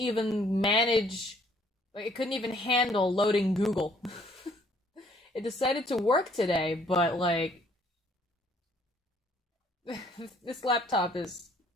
manage, like, it couldn't even handle loading Google. It decided to work today, but, like, this laptop is.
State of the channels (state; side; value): normal; both; correlation 0.62